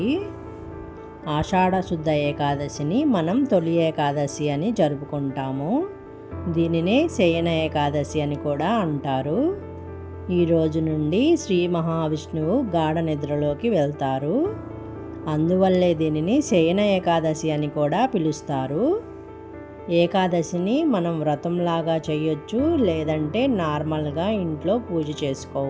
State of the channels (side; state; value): both; identical; correlation 1.00